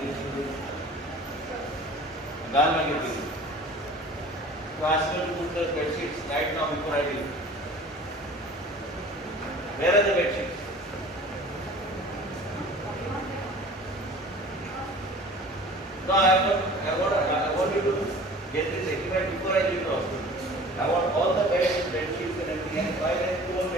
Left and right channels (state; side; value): normal; both; correlation 0.44